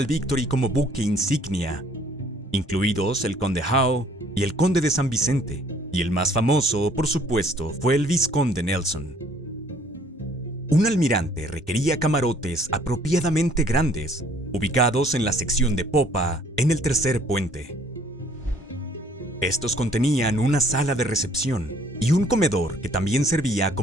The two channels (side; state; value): both; normal; correlation 0.60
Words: Victory como buque insignia, incluidos el Conde Howe y el Conde de San Vicente, y el más famoso, por supuesto, fue el Vizconde Nelson. Un almirante requería camarotes apropiadamente grandes, ubicados en la sección de popa, en el tercer puente. Estos contenían una sala de recepción y un comedor que también servía